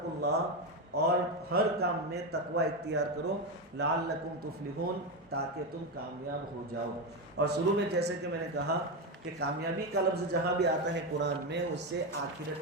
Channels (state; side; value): normal; both; correlation 0.12